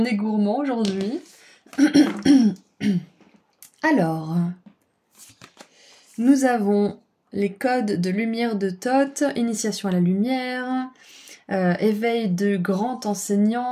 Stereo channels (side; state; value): both; identical; correlation 1.00